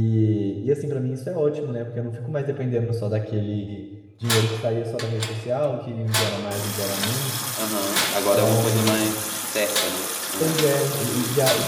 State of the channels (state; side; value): identical; both; correlation 1.00